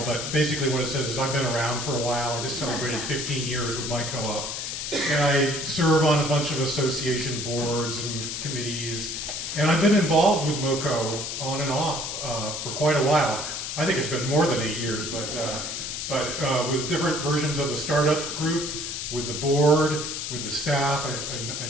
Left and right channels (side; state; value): left; noise; hiss, 4 dB below the sound